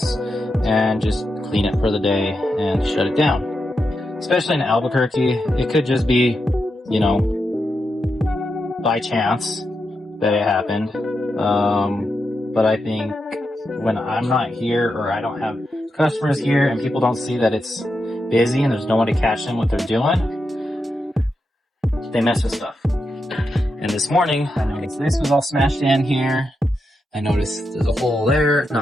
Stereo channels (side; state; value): both; normal; correlation 0.86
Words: and just clean it for the day and shut it down. Especially in Albuquerque, it could just be, you know, by chance that it happened. But I think when I'm not here or I don't have customers here and people don't see that it's busy and there's no one to catch them what they're doing, they mess with stuff. And this morning, I noticed this was all smashed in here. I noticed there's a hole there. It's